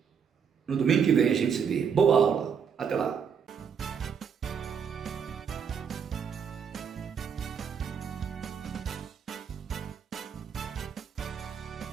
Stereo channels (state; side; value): quieter; left; 7.0 dB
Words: No domingo que vem a gente se vê. Boa aula. Até lá.